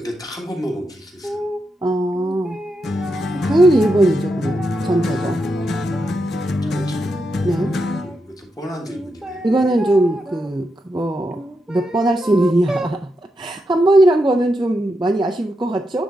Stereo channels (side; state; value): both; normal; correlation 0.85